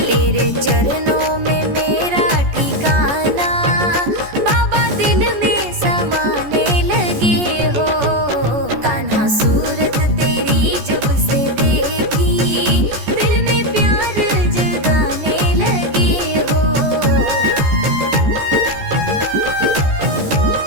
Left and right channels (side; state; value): left; late; 14 ms